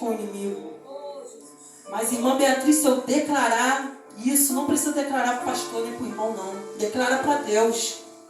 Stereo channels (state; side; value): identical; both; correlation 1.00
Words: o inimigo. Mas, irmã Beatriz, se eu declarar isso, não precisa declarar para o pastor nem para o irmão, não. Declara para Deus.